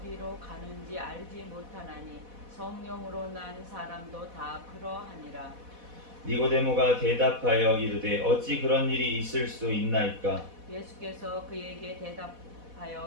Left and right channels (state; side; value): late; left; 4.1 ms